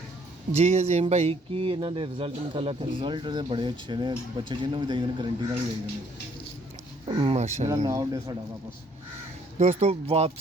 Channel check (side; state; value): both; normal; correlation 0.64